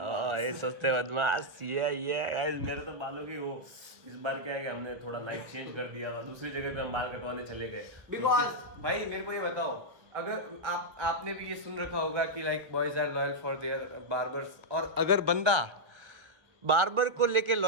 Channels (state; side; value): late; left; 1.5 ms